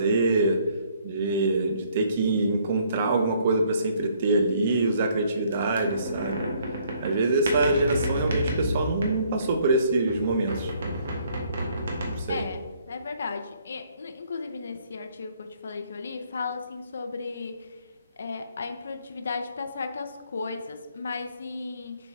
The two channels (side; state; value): both; inverted; correlation -0.65